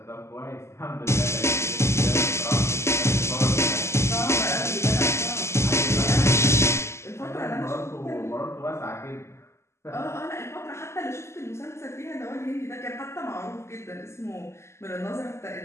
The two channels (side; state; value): right; late; 0.13 ms